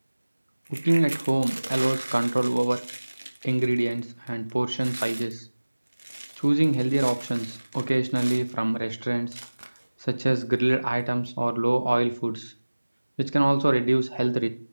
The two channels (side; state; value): both; inverted; correlation -1.00